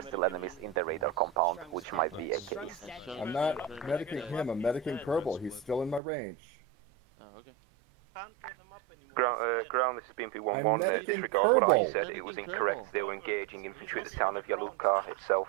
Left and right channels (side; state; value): left; drops out; at 6.0 s